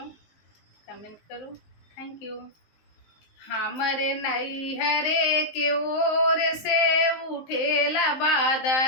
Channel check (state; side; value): late; right; 19 ms